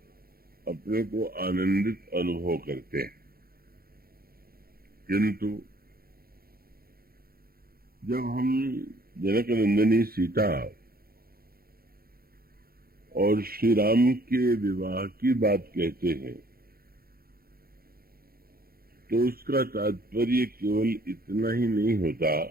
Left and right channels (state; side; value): late; left; 0.44 ms